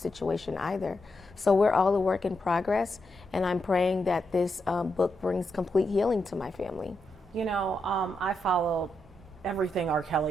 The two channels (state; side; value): normal; both; correlation 0.84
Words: either. So we're all a work in progress, and I'm praying that this book brings complete healing to my family. You know, I followed everything R.